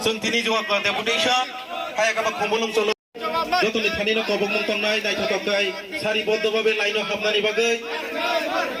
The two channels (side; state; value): both; identical; correlation 1.00